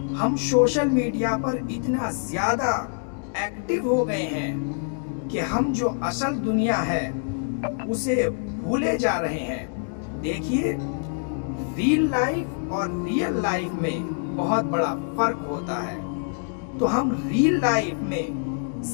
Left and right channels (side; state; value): right; silent; 61 dB below the other